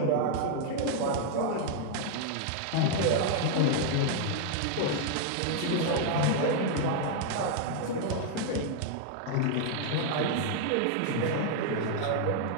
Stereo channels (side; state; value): both; different; correlation 0.00